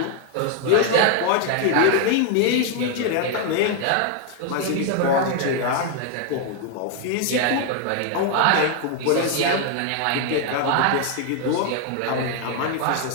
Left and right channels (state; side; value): different; both; correlation 0.01